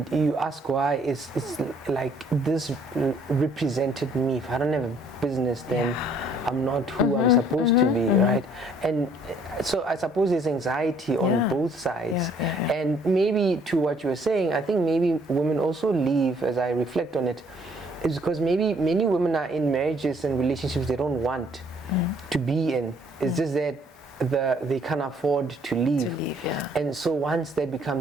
you ask why, it's like this represented me. If I don't have a business, then I'm not who I'm supposed to be, right? And so I suppose there's anxiety on both sides. And maybe to what you were saying, I think maybe women also leave, as I reflect on it, is because maybe many women are in marriages and relationships they don't want to be in. It's just that they can't afford to leave. And so once that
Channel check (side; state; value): both; normal; correlation 0.62